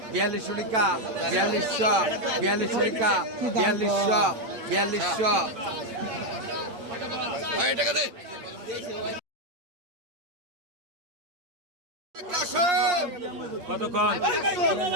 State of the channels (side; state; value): left; late; 9.0 ms